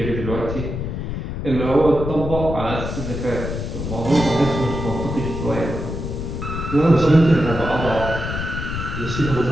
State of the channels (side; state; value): left; noise; rumble, 5 dB below the sound